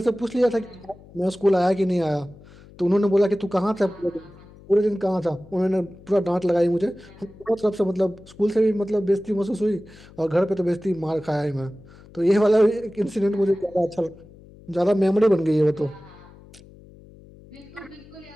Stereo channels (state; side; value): noise; left; hum, 22 dB below the sound